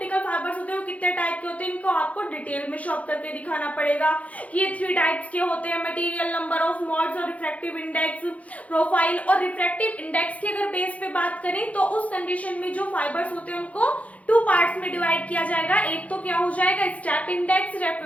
फाइबर्स होते हैं वो कितने तो आपको डिटेल में शॉप करके दिखाना पड़ेगा कि ये 3 टाइप्स के होते हैं, मटेरियल, नंबर ऑफ मोड्स और रिफ्रैक्टिव इंडेक्स, प्रोफाइल। और रिफ्रैक्टिव इंडेक्स की अगर बेस पे बात करें तो उस कंडीशन में जो फाइबर्स होते हैं उनको 2 पार्ट्स में डिवाइड किया जाएगा। एक तो क्या हो जाएगा स्टेप इंडेक्स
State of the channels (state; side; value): late; right; 0.067 ms